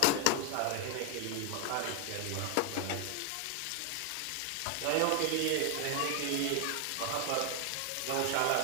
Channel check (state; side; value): different; both; correlation 0.01